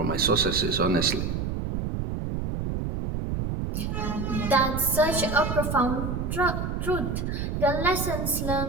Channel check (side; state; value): right; noise; rumble, 2 dB below the sound